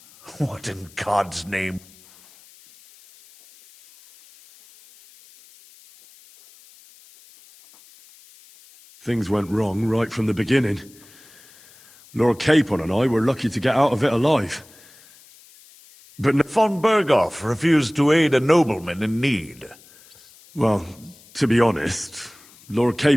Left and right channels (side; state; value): left; noise; hiss, 25 dB below the sound